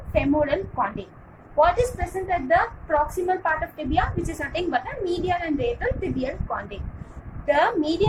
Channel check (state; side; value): identical; both; correlation 1.00